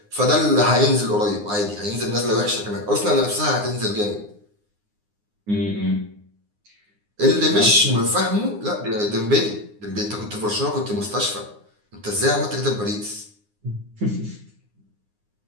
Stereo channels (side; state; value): left; late; 9.7 ms